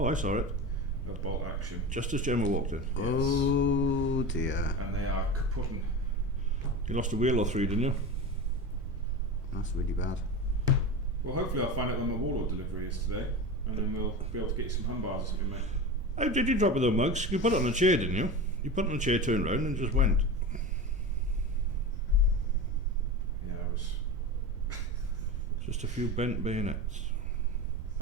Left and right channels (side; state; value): both; normal; correlation 0.27